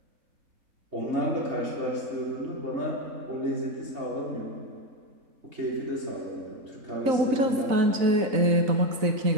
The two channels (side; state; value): left; late; 4.0 ms